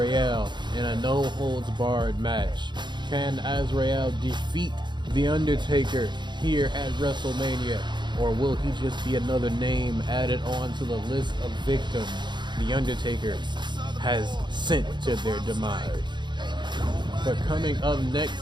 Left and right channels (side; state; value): left; late; 0.22 ms